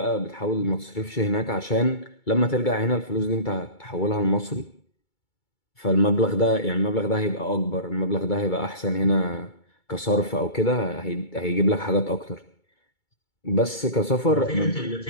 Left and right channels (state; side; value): late; right; 2.2 ms